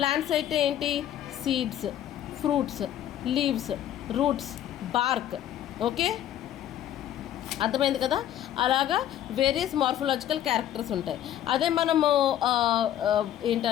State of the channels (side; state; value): right; quieter; 11.4 dB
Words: అయితే ఏంటి, seeds, fruits, leaves, roots, BARC. Okay, అర్థమైంది కదా. అలాగా various morphological characters ఉంటాయి. అదే మనము